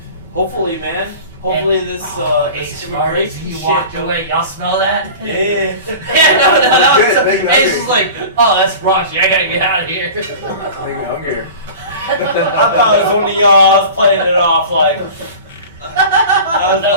Hopefully, man. Hopefully this Ace Marty, immigration he shit walked don't- away. Y'all smell that? Yeah. Yeah, no, that was Good, make me Ace was hungry. like, oh, that's raunchy. I gotta get out of here. Make me hungrier. I thought it was one of y'all. I was playing it off like. I was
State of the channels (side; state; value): both; inverted; correlation -0.37